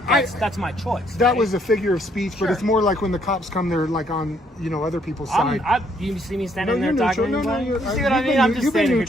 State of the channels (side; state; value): both; normal; correlation 0.68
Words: my choice. That right? was a figure of speech, but Sure. it's more like when the cops come, they're like on, other people's side. You see me No, standing you're there neutral. talking. No, you you're, see what you've I mean? been- I'm just you've been standing here